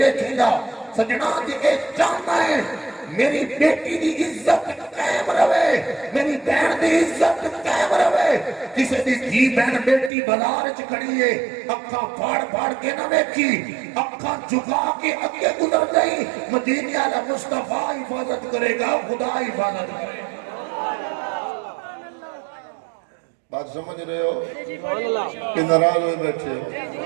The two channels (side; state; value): left; drops out; at 10.1 s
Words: ویکھیں گا۔ سجنا جی اے چاہتا ہے میری بیٹی دی عزت قائم رہے، میری بہن دی عزت قائم رہے، کسی دی دھی بہن بیٹی بازار وچ کھڑی ہے، اکھاں پھاڑ پھاڑ کے نہ ویکھی، اکھاں جھکا کے اگے گزر گئی، مدینے والا مصطفیٰ حفاظت کرے گا، خدا حفاظت کرے گا۔ بات سمجھ رہے ہو کہ ناراض ہوئے بیٹھے